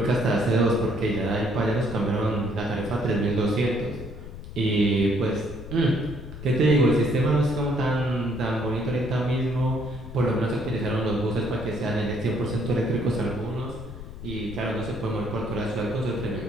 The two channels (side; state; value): left; noise; rumble, 12 dB below the sound